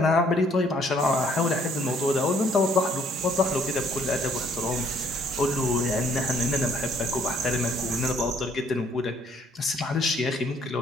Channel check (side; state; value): both; normal; correlation 0.63